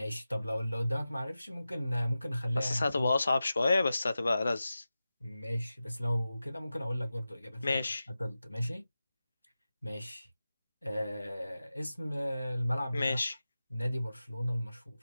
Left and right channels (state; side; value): inverted; both; correlation -0.93